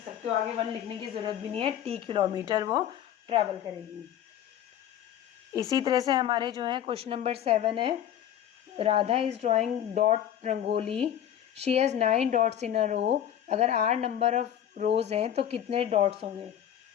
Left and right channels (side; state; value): right; quieter; 10.4 dB